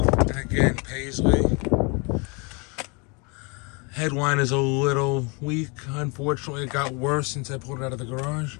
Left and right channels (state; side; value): quieter; right; 31.3 dB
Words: And again, Paisley. Headline is a little weak. Unfortunately, it got worse since I pulled it out of the garage.